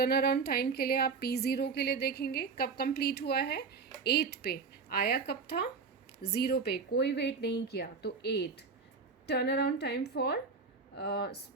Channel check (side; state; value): left; quieter; 4.9 dB